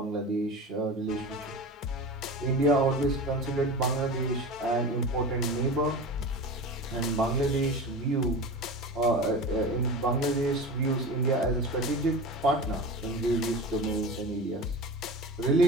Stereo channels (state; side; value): normal; both; correlation 0.30